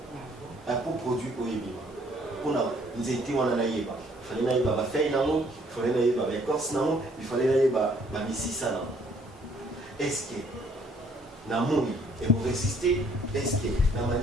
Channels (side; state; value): both; normal; correlation 0.63